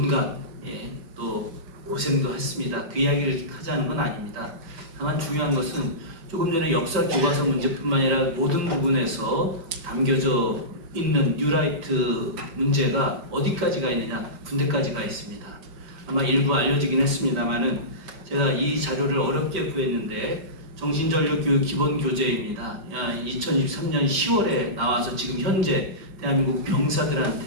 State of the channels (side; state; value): left; late; 5.8 ms